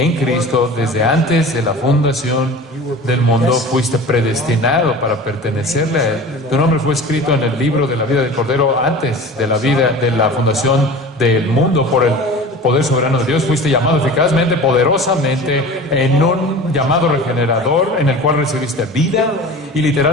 Cristo desde antes de la fundación del mundo. Fuiste predestinado para pertenecerle a Él. Tu nombre fue escrito en el libro de la vida del Cordero antes de la fundación del mundo por el poder soberano de Dios. Fuiste llamado eficazmente, poderosamente, en un llamado regenerador en el cual recibiste vida y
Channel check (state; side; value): normal; both; correlation 0.38